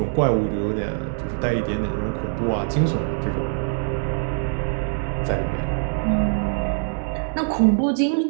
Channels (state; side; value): silent; left; digital silence